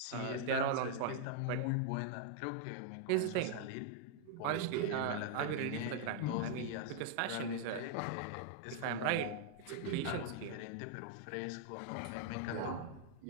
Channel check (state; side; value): different; both; correlation 0.00